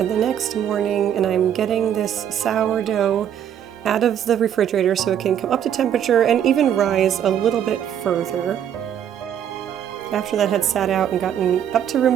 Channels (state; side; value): quieter; left; 9.5 dB